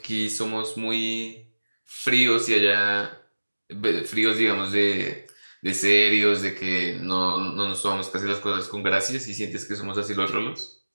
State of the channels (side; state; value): both; inverted; correlation -1.00